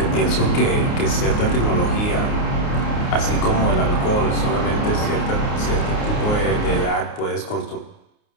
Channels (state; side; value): late; right; 29 ms